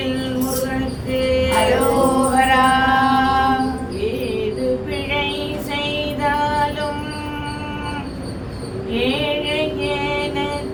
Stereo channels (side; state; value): both; identical; correlation 1.00